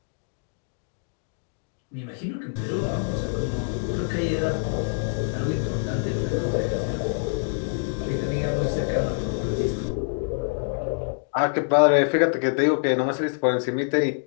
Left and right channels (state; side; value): silent; right; digital silence